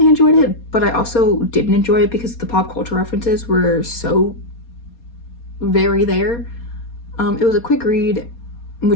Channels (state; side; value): late; right; 4.2 ms